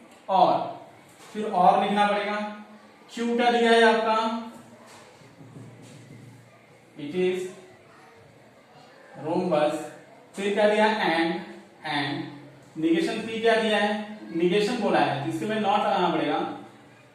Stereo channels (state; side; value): identical; both; correlation 1.00